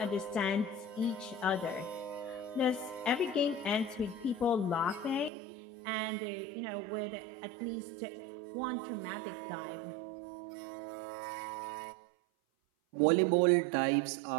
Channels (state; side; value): drops out; left; at 5.3 s